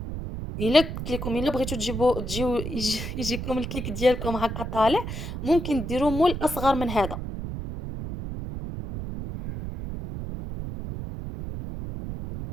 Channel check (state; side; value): noise; right; rumble, 6 dB below the sound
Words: الا قلت لكم الا بغيتو تجيو يجيكم الكيك ديالكم هكا طالع، ممكن ديروا مول اصغر من هذا.